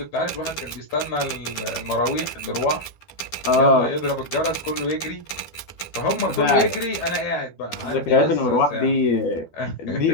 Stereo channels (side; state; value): right; late; 12 ms